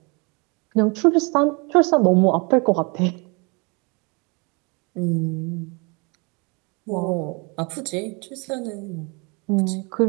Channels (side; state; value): left; quieter; 30.2 dB